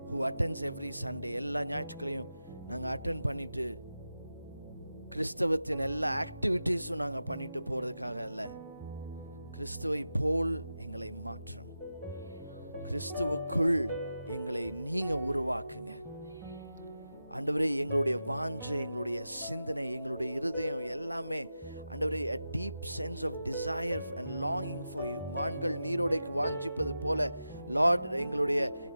who attends every Sunday. எல்லா ஞாயிற்றுக்கிழையும் நாங்கள் அட்டென்ட் பண்ணிட்டு கிறிஸ்தவத்தின் எல்லா ஆக்டிவிட்டீஸும் நாங்கள் பண்ணிட்டு போகிறதுக்காக அல்ல. கிறிஸ்துவை போல் எங்களை மாற்றும். கிறிஸ்துவுக்குள் எங்களை நீங்கள் உருவாக்குங்க ஆண்டவரே. எங்களுடைய வாஞ்சை, எங்களுடைய சிந்தனை, எங்களுடைய இருதயம் எல்லாமே ஆண்டவரே a deep sense of desire and longing for you. மான்கள் நீரோடைக்கு வாஞ்சிப்பது போல லார்ட்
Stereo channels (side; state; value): both; inverted; correlation -0.91